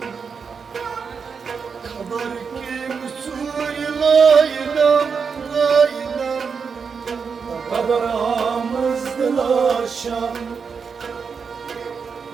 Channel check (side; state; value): left; quieter; 5.8 dB